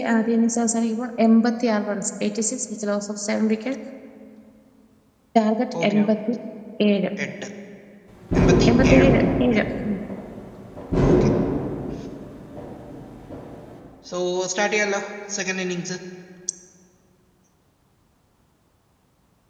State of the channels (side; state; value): both; identical; correlation 1.00